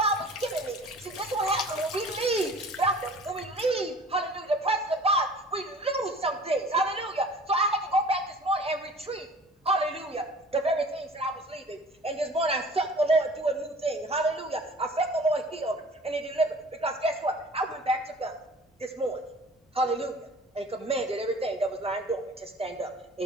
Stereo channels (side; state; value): both; normal; correlation 0.46